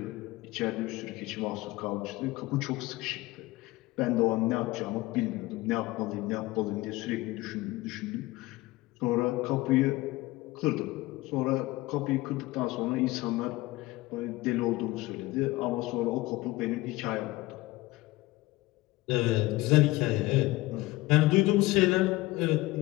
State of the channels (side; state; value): right; quieter; 19.6 dB